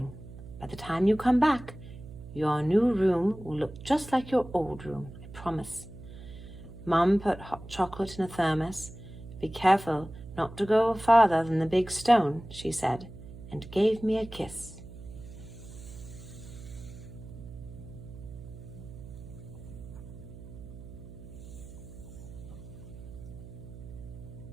By the time you come back, your new room will look just like your old room, I promise." Mom put hot chocolate in a thermos. "Be careful not to go farther than the big stone," she said, and gave me a kiss.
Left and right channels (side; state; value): right; noise; hum, 14 dB below the sound